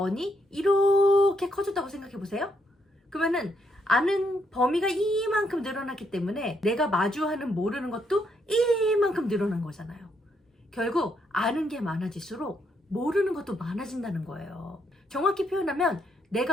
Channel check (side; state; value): both; normal; correlation 0.75